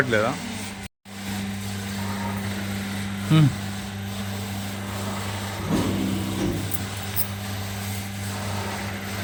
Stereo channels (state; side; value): identical; both; correlation 1.00